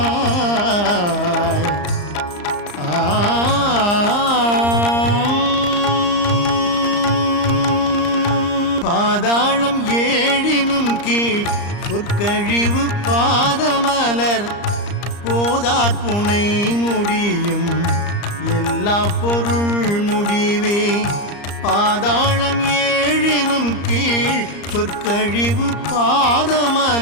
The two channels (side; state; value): right; late; 34 ms